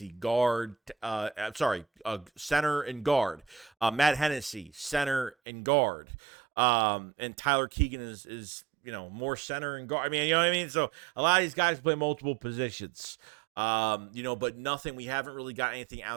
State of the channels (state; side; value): drops out; left; at 5.4 s